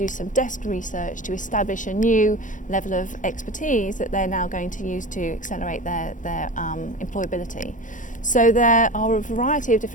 some desk research to establish a new level of expertise that they're now going to use to accelerate their employability? So there are a variety of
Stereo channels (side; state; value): right; late; 0.37 ms